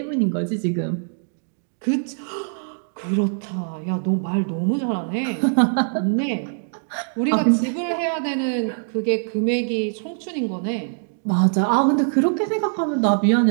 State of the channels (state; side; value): silent; left; digital silence